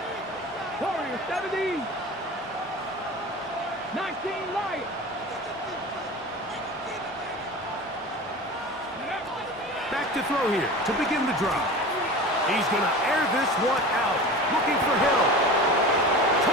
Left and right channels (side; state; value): both; normal; correlation 0.34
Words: Warriors 70. 19 Lions. Back to throw here to begin the drive. He's going to air this one out. Looking for Hill.